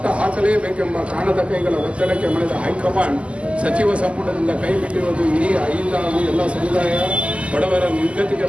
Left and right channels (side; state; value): left; late; 0.058 ms